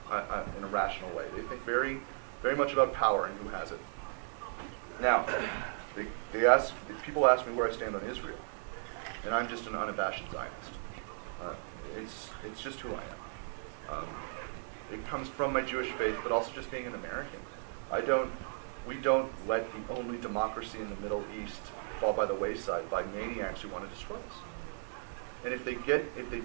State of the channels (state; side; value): silent; left; digital silence